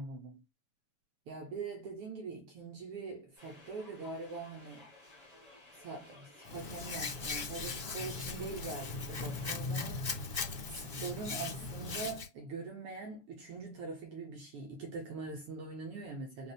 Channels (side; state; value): left; late; 7.1 ms